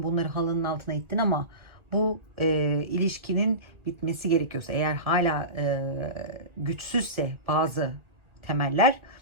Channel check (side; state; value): left; late; 1.7 ms